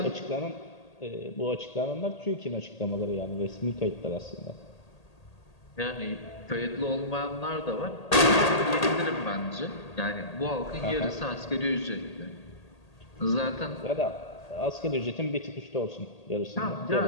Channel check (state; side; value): late; right; 1.8 ms